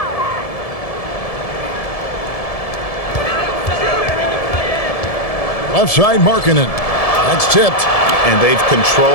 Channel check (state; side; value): late; right; 1.7 ms